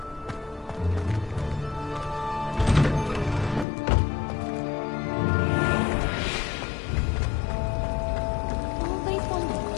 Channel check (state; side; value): drops out; right; at 3.7 s